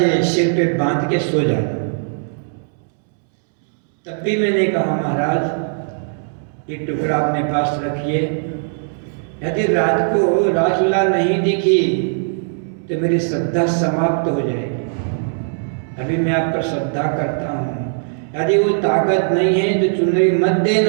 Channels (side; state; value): left; silent; digital silence